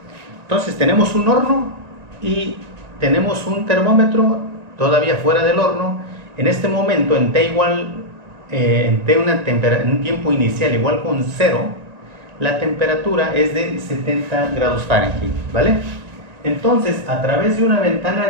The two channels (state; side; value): late; left; 1.9 ms